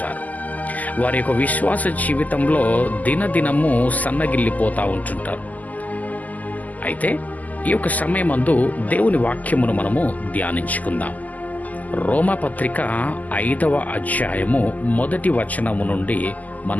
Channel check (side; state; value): right; late; 0.079 ms